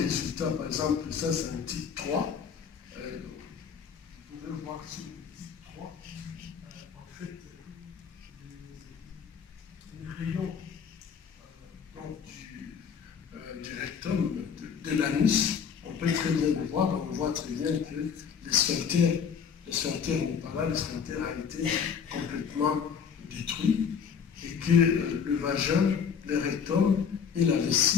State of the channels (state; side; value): quieter; right; 6.8 dB